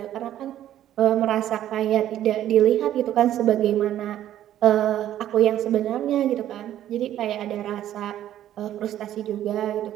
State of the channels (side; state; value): left; quieter; 12.0 dB